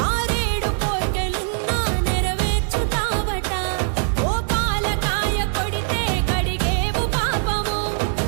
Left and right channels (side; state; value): left; silent; 62 dB below the other